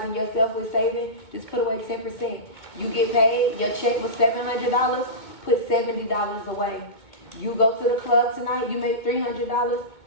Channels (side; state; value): right; late; 2.2 ms